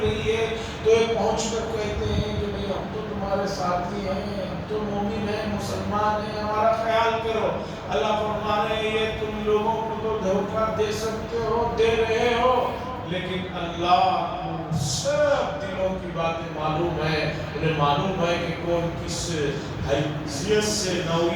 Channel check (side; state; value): both; identical; correlation 1.00